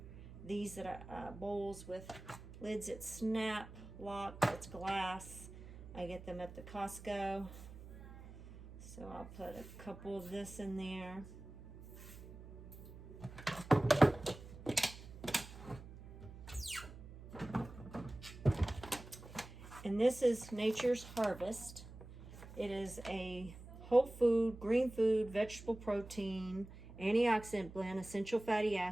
these that are bowls with lids that snap, lock, it's glass. I get them at the Costco. So I'll put a couple of this in there. And this is Nature's Harvest. It is a whole food, green food, vegetable protein, antioxidant blend, essential fatty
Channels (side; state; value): right; noise; hum, 15 dB below the sound